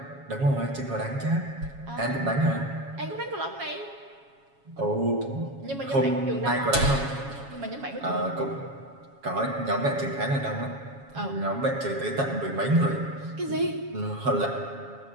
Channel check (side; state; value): left; late; 7.3 ms